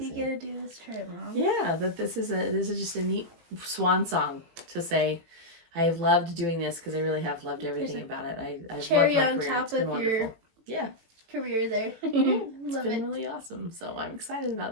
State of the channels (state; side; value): late; left; 18 ms